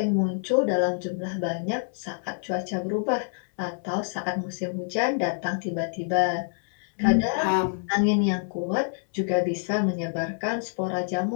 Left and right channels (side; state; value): right; silent; digital silence